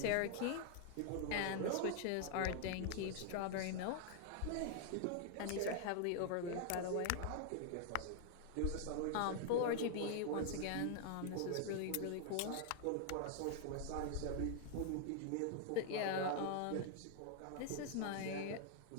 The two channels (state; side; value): different; both; correlation 0.00